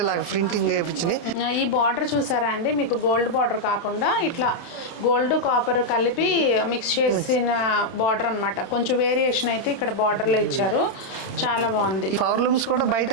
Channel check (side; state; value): right; late; 30 ms